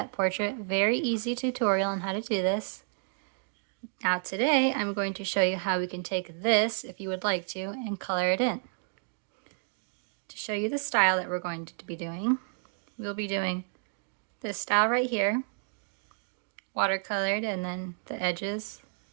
portrait. Very easy tutorial on how to do this. Now today I'm going to show you how we can take this, if you would like to, and color it in. To show you the style that we're going to be doing, we'll be doing this style right here, watercolored, and then the edges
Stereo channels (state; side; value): silent; left; digital silence